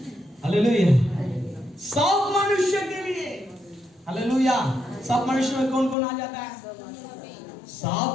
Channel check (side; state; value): right; drops out; at 6.0 s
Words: हालेलुया, सब मनुष्य के लिए। हालेलुया। सब मनुष्य में कौन कौन आ जाता है? सब